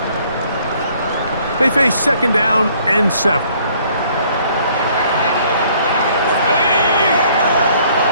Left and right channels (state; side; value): inverted; both; correlation -0.61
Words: They face second down and 7.